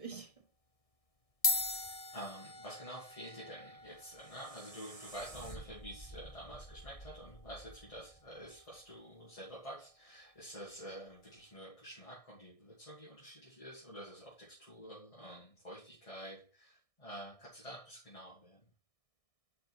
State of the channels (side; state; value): right; late; 1.6 ms